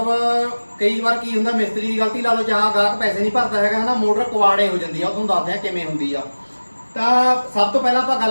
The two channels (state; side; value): inverted; both; correlation -1.00